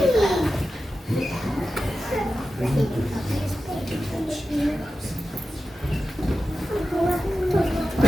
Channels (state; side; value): normal; both; correlation 0.93